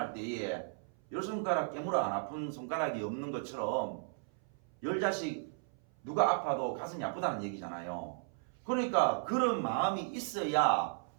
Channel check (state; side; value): silent; left; 54 dB below the other